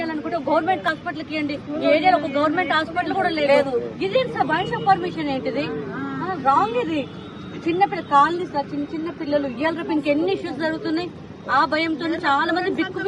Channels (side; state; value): both; identical; correlation 1.00